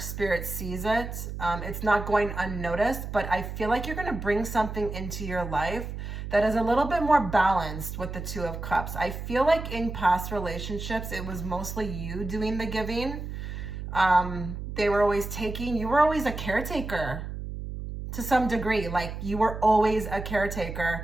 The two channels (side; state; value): right; noise; hum, 7 dB below the sound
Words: sees it. It's not going unnoticed, but I feel like you're going to bring something into your life that is a little bit more balanced with the 2 of Cups. I feel like in past relationships, it was mostly you doing the giving. They were always taking. You were always a caretaker to some degree. Like, you were always a